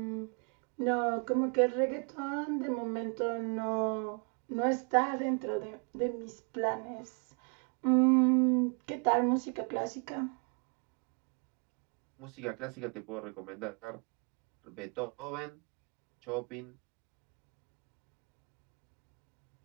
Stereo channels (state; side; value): quieter; left; 36.6 dB